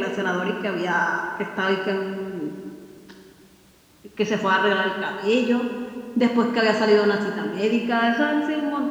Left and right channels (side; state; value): both; identical; correlation 1.00